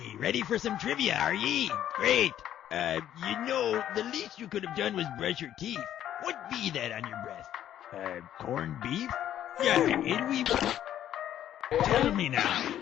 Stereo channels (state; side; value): quieter; right; 11.2 dB